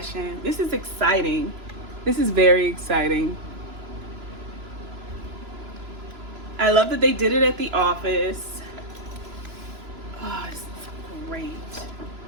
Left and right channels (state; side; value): late; left; 2.9 ms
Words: This is exciting. This is very exciting. I love that they did it at the office. Oh, it's great.